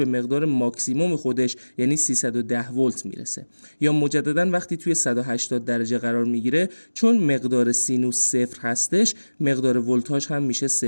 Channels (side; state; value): both; inverted; correlation -1.00